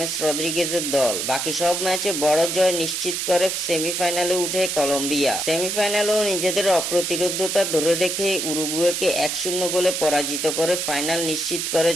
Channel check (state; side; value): noise; right; hiss, 2 dB below the sound